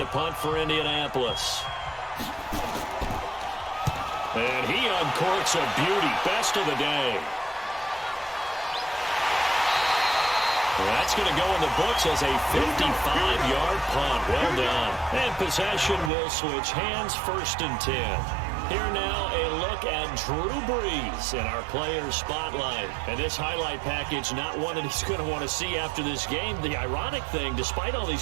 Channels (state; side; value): drops out; left; at 16.1 s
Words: punt for Indianapolis. And he uncorks a beauty. Best of the day. That's going to go in the books as a 55-yard punt. Well done. And possession will switch hands, 1st and 10. Here now a look at Drew Brees in our player spotlight. And this highlight package, not one that he's going to want to see after this game. The ironic thing, despite all